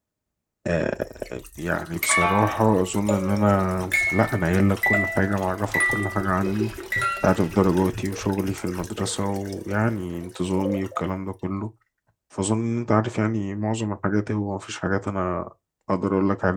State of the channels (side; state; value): both; identical; correlation 1.00